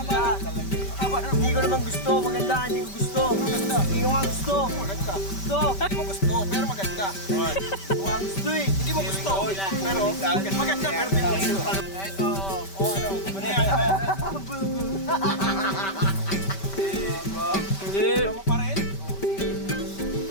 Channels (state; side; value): late; right; 5.2 ms